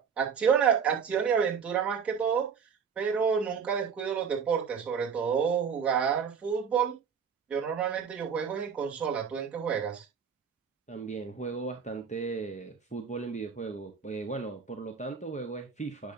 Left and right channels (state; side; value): quieter; left; 6.6 dB